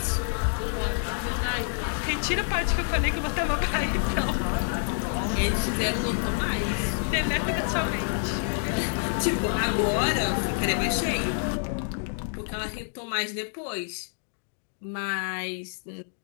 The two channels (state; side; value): silent; right; digital silence